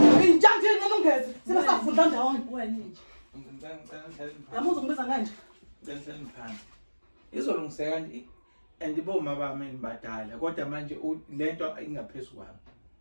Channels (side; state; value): both; inverted; correlation -1.00